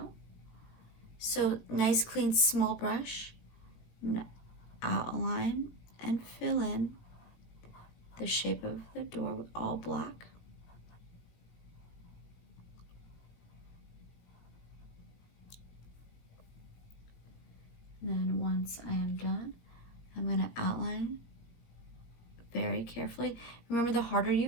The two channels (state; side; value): late; right; 18 ms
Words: So nice clean small brush. I'm going to outline and fill in the shape of the door with all black. And then once I am done, I'm going to outline very carefully. Remember, the harder